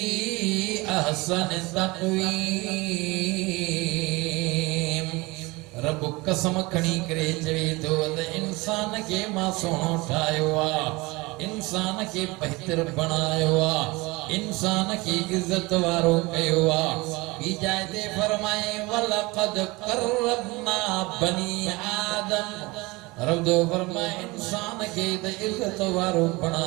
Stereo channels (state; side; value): quieter; left; 23.5 dB